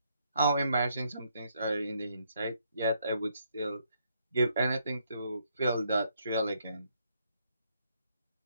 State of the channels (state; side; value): inverted; both; correlation -0.73